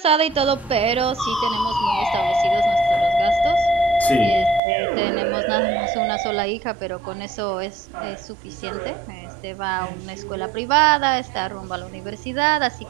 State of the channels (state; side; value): drops out; left; at 4.6 s